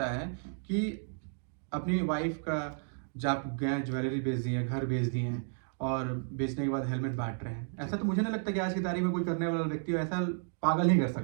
है कि अपनी वाइफ का जब गए ज्वेलरी बेच दी है, घर बेच दिए हैं और बेचने के बाद हेलमेट बांट रहे हैं। ऐसा तो मुझे नहीं लगता कि आज की तारीख में कोई करने वाला व्यक्ति ऐसा पागल ही कर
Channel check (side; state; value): left; silent; digital silence